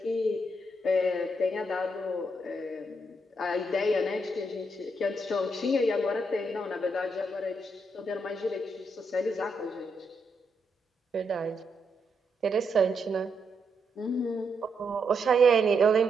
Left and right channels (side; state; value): both; normal; correlation 0.79